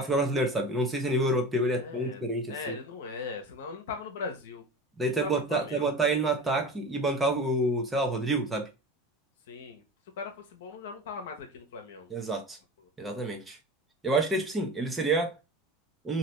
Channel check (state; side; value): normal; both; correlation 0.32